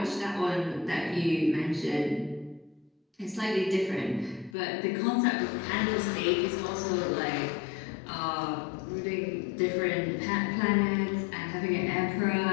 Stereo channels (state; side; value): drops out; right; at 4.5 s